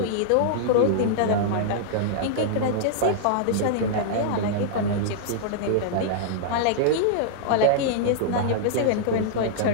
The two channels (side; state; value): both; different; correlation -0.02